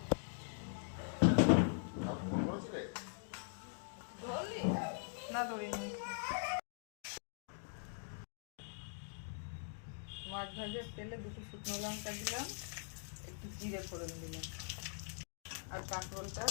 না ধরিনি। মাছ ভাজার তেলে দুটো শুকনো লঙ্কা দিলাম, একটু জিরে ফোড়ন দিলাম, আর কাঁকরোলটা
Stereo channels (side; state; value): right; silent; digital silence